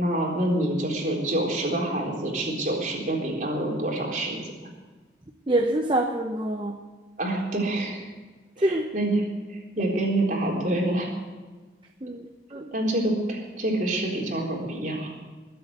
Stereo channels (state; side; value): normal; both; correlation 0.52